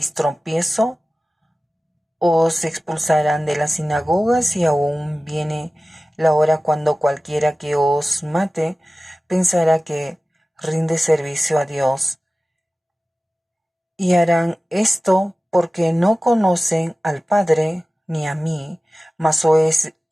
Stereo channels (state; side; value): normal; both; correlation 0.96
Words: tropiezo. Os expulsarán de las sinagogas y aún viene la hora cuando cualquiera que os mate pensará que rinde servicio a Dios. Y harán esto porque no conocen al Padre ni a mí, mas